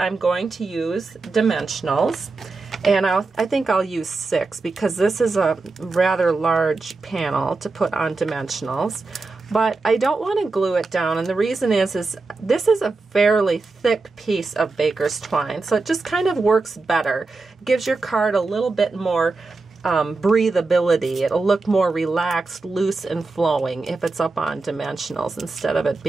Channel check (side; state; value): left; quieter; 3.8 dB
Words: going to use dimensionals, and I think I'll use 6 because this is a rather large panel to put on dimensionals. But I don't want to glue it down, and the reason is this is a fairly thick piece of baker's twine, so it just kind of works better. It gives your card a little bit more breathability. It'll look more relaxed, loose, and flowing if it's up on dimensionals instead of it